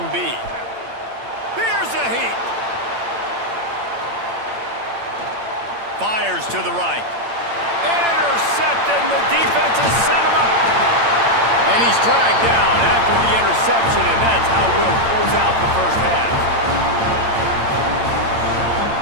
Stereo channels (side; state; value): left; late; 8.8 ms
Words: be? Here's a heat. Fires to the right. Intercepted, and the defense has set him up. And he's dragged down after the interception, and that's how we'll close out the first half.